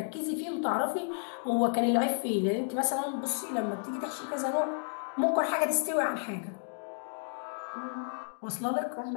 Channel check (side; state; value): right; silent; digital silence